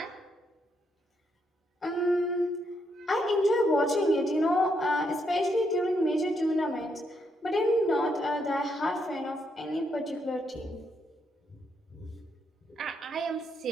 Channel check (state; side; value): normal; both; correlation 0.77